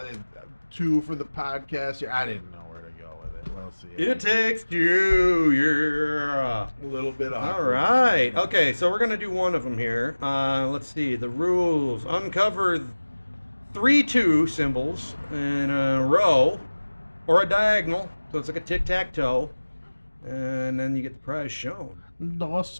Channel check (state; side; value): inverted; both; correlation -1.00